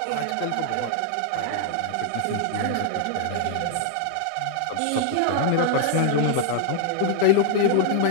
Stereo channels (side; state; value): both; different; correlation 0.00